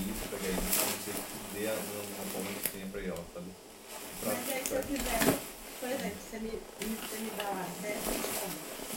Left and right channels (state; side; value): identical; both; correlation 1.00